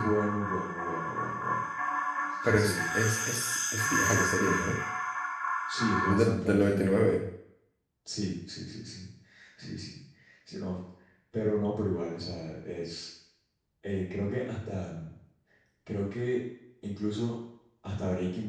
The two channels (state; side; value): identical; both; correlation 1.00